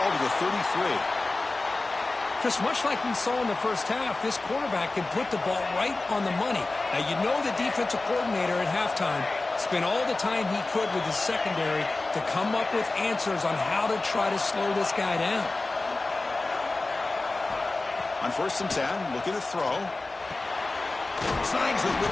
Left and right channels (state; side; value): quieter; right; 3.2 dB